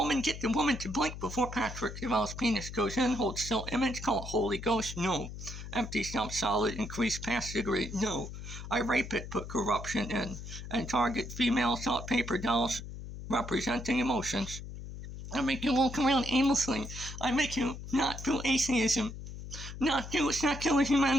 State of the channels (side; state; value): left; noise; hum, 10 dB below the sound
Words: the woman to blink before Patrick Deval's penis goes in, hold still image, call it Holy Ghost, no. Empty stump solid, increase pass degree, no. I rape it, put corruption in, and target female salt paper dolls representing emotions. I make you walk around aimlessly. I make you not do atheism, not do secular